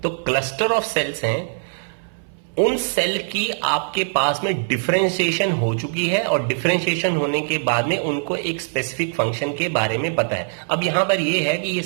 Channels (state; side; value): silent; left; 62 dB below the other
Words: तो क्लस्टर ऑफ सेल्स हैं, उन सेल की आपके पास में डिफरेंशिएशन हो चुकी है और डिफरेंशिएशन होने के बाद में उनको एक स्पेसिफिक फंक्शन के बारे में पता है। अब यहां पर ये है कि ये